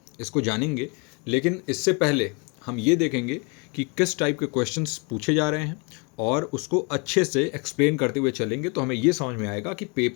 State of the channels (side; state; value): right; quieter; 32.5 dB